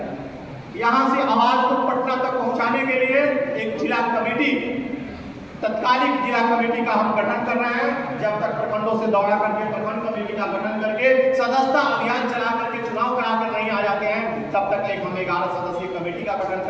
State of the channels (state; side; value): identical; both; correlation 1.00